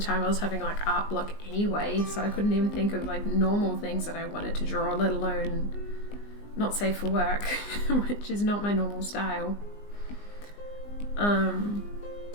I was having like art block anyway, so I couldn't even think of like normal things that I wanted to draw, let alone not safe for work, which is not my normal style.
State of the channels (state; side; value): late; right; 19 ms